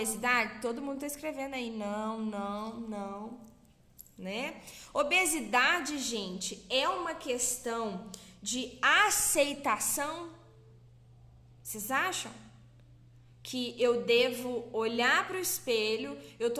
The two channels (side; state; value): both; identical; correlation 1.00